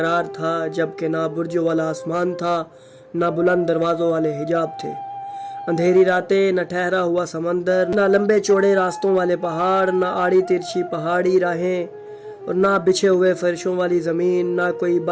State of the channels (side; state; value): both; identical; correlation 1.00